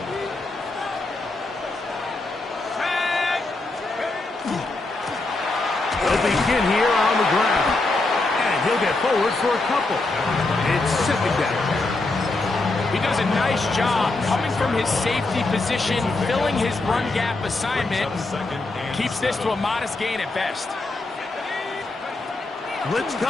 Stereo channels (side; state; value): right; quieter; 3.2 dB